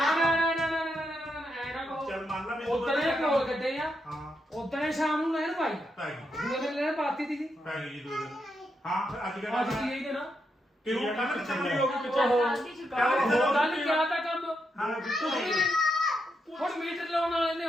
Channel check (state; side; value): normal; both; correlation 0.82